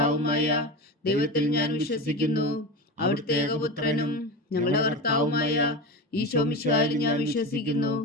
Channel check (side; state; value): both; normal; correlation 0.24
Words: ദൈവത്തിൽ ഞാൻ വിശ്വസിക്കുന്നു. അവിടുത്തെ ഏകപുത്രനും ഞങ്ങളുടെ കർത്താവുമായ ഈശോ മിശിഹായിൽ ഞാൻ വിശ്വസിക്കുന്നു.